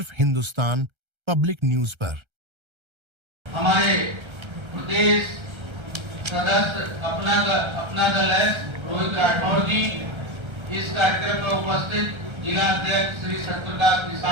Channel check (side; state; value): left; late; 1.3 ms